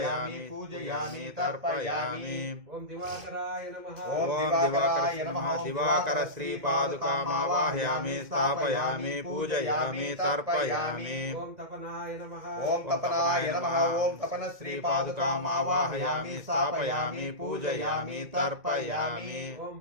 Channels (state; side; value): late; left; 2.0 ms